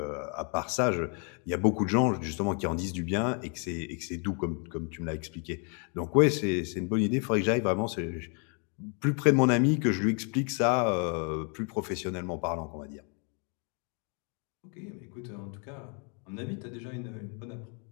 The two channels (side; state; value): right; quieter; 38.2 dB